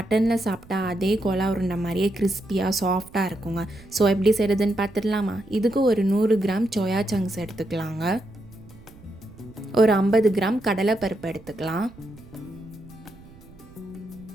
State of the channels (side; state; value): right; noise; rumble, 22 dB below the sound